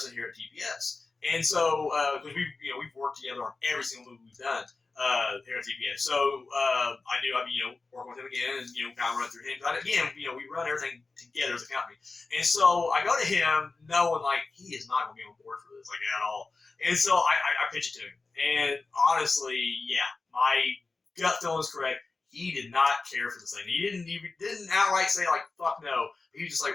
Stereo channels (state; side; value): quieter; right; 3.8 dB